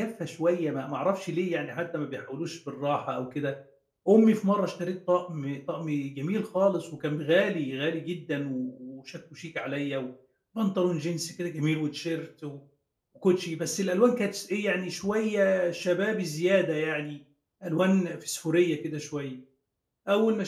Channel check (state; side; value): identical; both; correlation 1.00